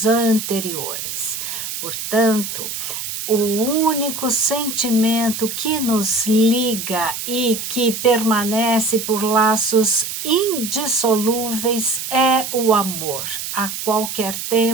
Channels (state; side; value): noise; right; hiss, 6 dB below the sound